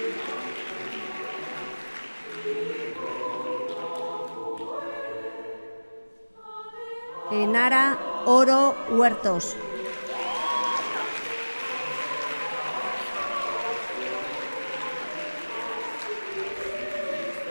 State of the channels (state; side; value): inverted; both; correlation -1.00